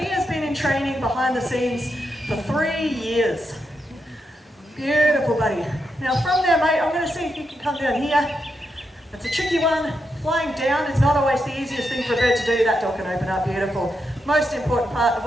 has been in training behind the scenes for 3 years. Beautiful, buddy. Now, from there, mate, I'm going to see if you can come down here. It's a tricky one. Flying down is not always the easiest thing for a bird to do. That door can open up, beautiful. Most important part of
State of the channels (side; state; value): both; normal; correlation 0.84